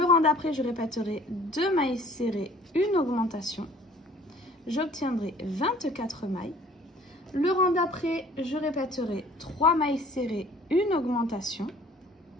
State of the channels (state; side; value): normal; both; correlation 0.53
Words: rang d'après, je répéterai 2 mailles serrées, une augmentation. J'obtiendrai 24 mailles. Le rang d'après, je répéterai 3 mailles serrées, une augmentation.